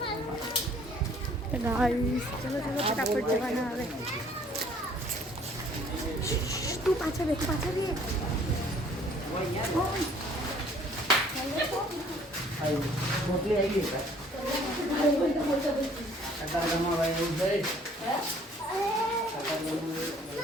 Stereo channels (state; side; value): normal; both; correlation 0.57